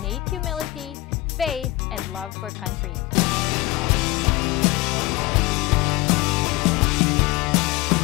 humility, faith, and love for country.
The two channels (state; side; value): quieter; right; 19.1 dB